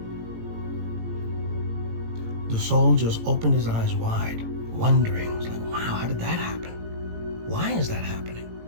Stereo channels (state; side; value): late; left; 18 ms